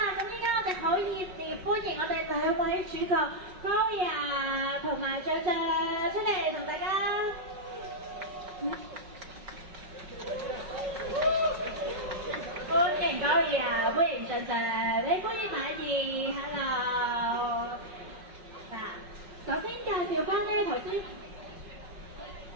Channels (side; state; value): left; late; 5.4 ms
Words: 咁依依家我哋好熱烈歡迎我哋兩位主角 Gloria 同埋象象出嚟同大家。歡迎 Gloria，歡迎象象，你歡迎馬兒 ，Hello。嗱，首先介紹翻呢頭先。